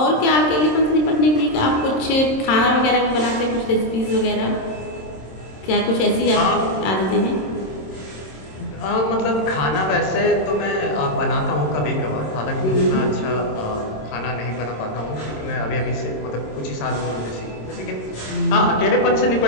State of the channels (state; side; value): late; right; 26 ms